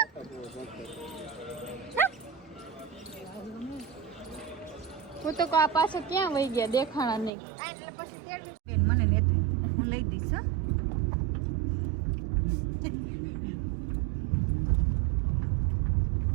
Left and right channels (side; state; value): left; drops out; at 7.3 s